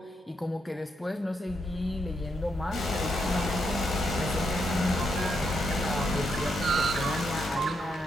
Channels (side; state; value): both; normal; correlation 0.80